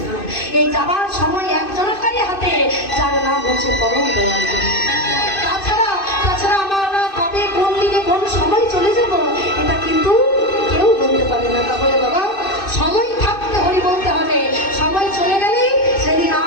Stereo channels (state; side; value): late; right; 2.6 ms